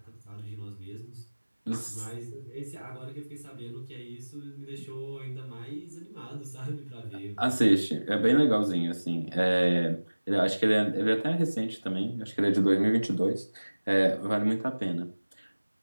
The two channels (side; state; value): both; inverted; correlation -1.00